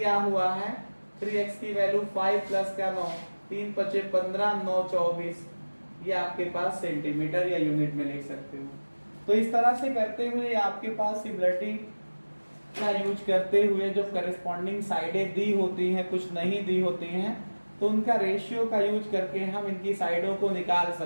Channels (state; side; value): inverted; both; correlation -1.00